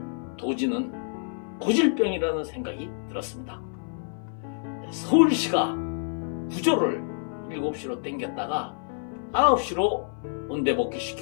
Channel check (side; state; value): right; silent; 57 dB below the other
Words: 도지는 고질병이라는 생각이 들었습니다. 서울시가 구조를 7시로 땡겼다가 9시로